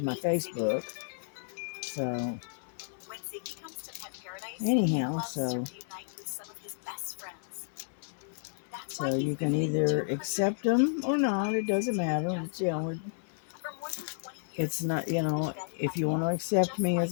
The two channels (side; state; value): right; silent; digital silence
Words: Facebook. So anyhow, so you can either accept them or not. It doesn't matter. It's not, if you want to accept me